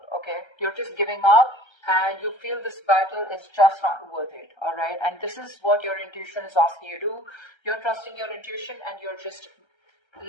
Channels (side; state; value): right; late; 1.3 ms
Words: Okay, you're just giving up, and you feel this battle is just not worth it. All right, and this is what your intuition is asking you to do. You're trusting your intuition, and you're just